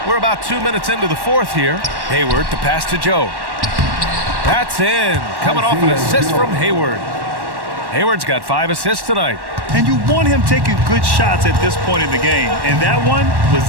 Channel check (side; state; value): left; late; 1.1 ms